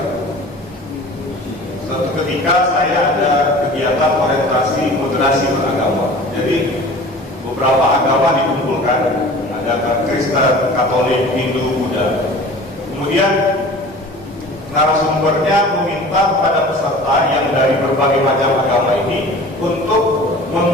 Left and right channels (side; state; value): both; normal; correlation 0.42